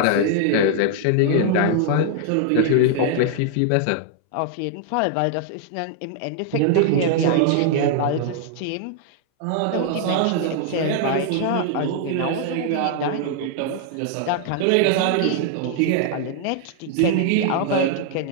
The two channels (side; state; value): both; different; correlation 0.00